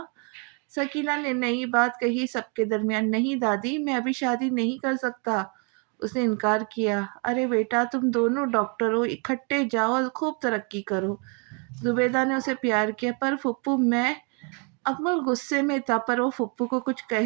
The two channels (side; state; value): left; quieter; 35.5 dB